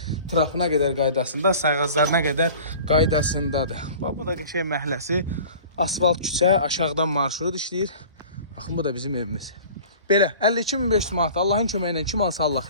Trapına qədər qaydasında, sayğaclarına qədər qaydasındadır. Bax, bu da qəşəng məhəlləsi. Asfalt küçə, aşağıdan marşrut işləyir. Baxın, bu da bizim evimiz. Belə, 52.500 manat. Allahın köməyi ilə kim alsa Allah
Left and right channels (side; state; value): both; inverted; correlation -0.43